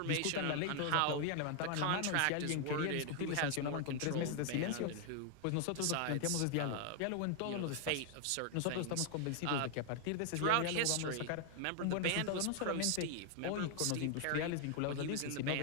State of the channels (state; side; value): different; both; correlation 0.00